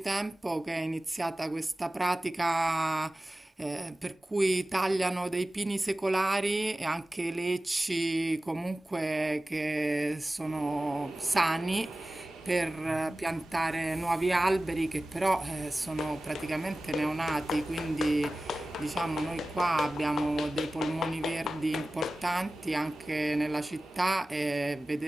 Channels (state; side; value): normal; both; correlation 0.96